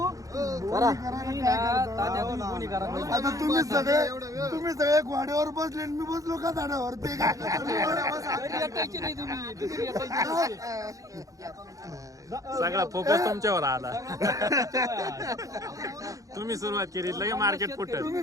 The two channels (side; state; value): left; late; 0.16 ms